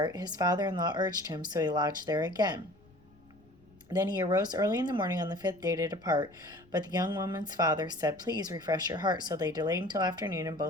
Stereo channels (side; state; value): left; noise; rumble, 28 dB below the sound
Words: his father-in-law urged him, so he lodged there again. Then he arose early in the morning on the 5th day to depart. But the young woman's father said, "Please refresh your heart." So they delayed until afternoon, and